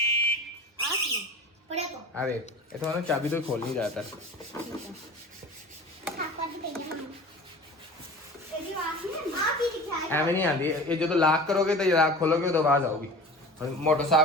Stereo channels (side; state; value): both; normal; correlation 0.37